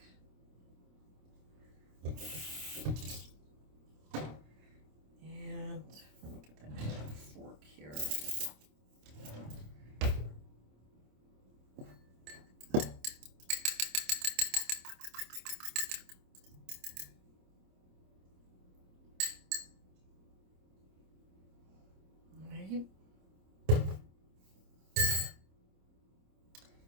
And let me get that fork here.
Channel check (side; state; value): left; late; 26 ms